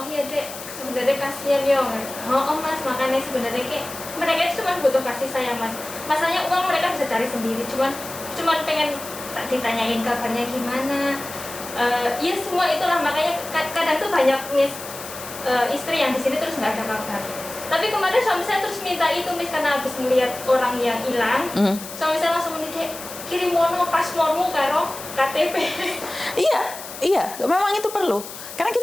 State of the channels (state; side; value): noise; left; hiss, 12 dB below the sound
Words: iya dek, sebenarnya kasihan ya. Oh Mas, makanya sebenarnya kayak mereka itu cuma butuh kasih sayang Mas. Masalahnya uang mereka bisa cari sendiri, cuman pengen tak ditanyain kabarnya gimana. Ya semua itulah, makanya kadang tuh banyak Miss istri yang di sini terus nggak ada kabar. Tapi kemarin suami saya terus minta itu Miss, karena habis melihat orang yang hilang. Suami saya langsung menitip kirim mono paspormu karo KTP. Iya, memang itu perlu. Karena